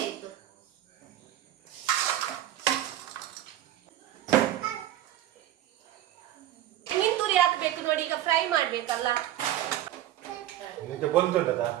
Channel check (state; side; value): quieter; left; 13.0 dB